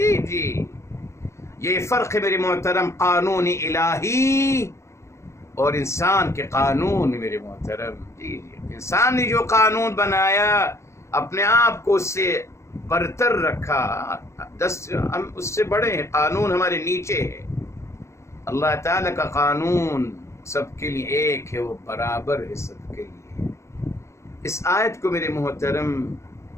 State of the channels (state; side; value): late; right; 0.14 ms